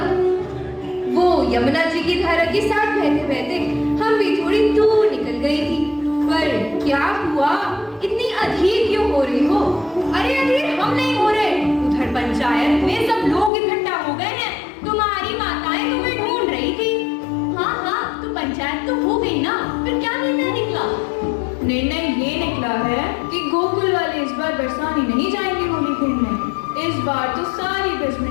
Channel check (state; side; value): drops out; right; at 13.5 s